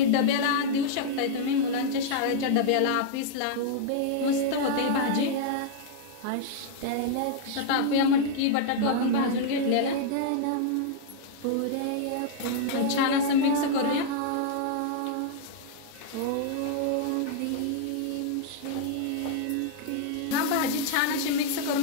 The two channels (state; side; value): different; both; correlation -0.01